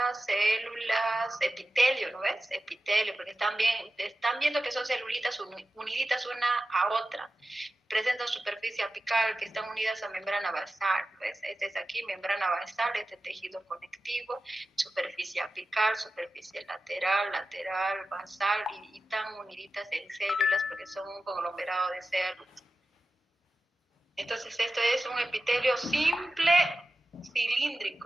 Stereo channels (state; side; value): normal; both; correlation 0.94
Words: epitelio, ¿no ves? Epitelio, porque están viendo que son celulitas uniditas una a otra. Presentan superficie apical que están unidas a membrana basal, ¿ves? Este es aquí, membrana basal, este tejido conectivo, superficie apical, superficie lateral, basal, y están uniditas en células porque son un conglomerado de células. Entonces esto es un epitelio simple